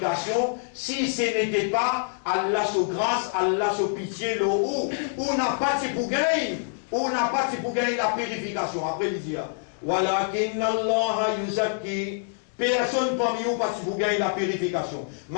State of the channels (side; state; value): right; silent; digital silence